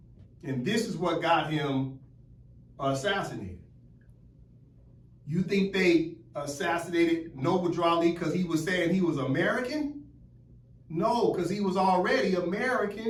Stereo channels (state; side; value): identical; both; correlation 1.00